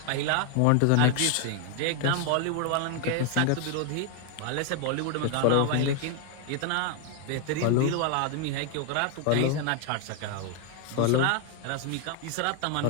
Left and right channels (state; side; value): different; both; correlation 0.01